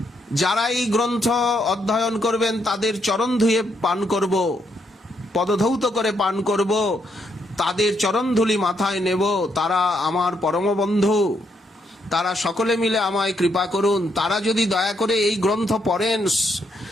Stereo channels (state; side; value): normal; both; correlation 0.76